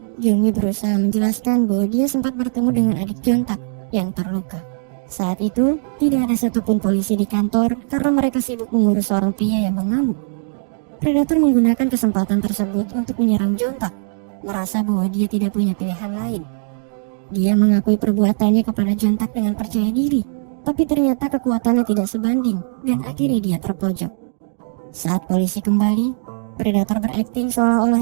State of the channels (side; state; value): left; silent; digital silence